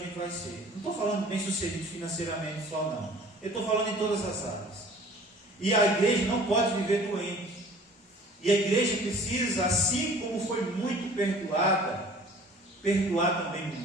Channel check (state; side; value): normal; both; correlation 0.48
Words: vai ser. Não estou falando bem-sucedido financeiramente só, não. Eu estou falando em todas as áreas. E a igreja não pode viver doente. E a igreja precisa, assim como foi muito perdoada, perdoar também